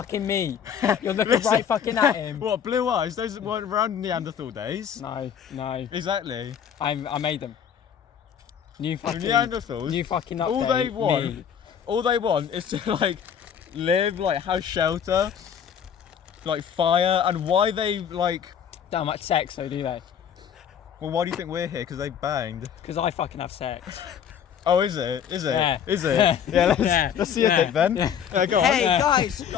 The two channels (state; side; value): quieter; right; 8.3 dB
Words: me. You're looking Listen. right fucking at him. What, blue eyes? Those weren't around Neanderthal days. No. Exactly. I made them. New The fucking... Neanderthals. New fucking update. All they want is to like live, like have shelter, like fire, and why they like. Don't much sex though, do they? Well, why do you think we're here? Because they banged. Because I fucking have sex. Oh, is it? Is it? Yeah. Is it? Yeah. Let's see your Yeah. dick then. Yeah, go on. Hey Yeah. guys,